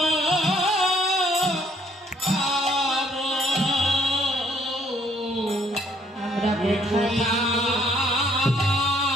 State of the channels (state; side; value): normal; both; correlation 0.64